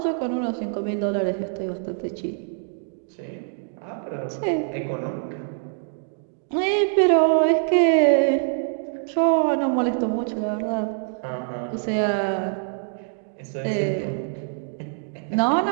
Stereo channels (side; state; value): left; silent; digital silence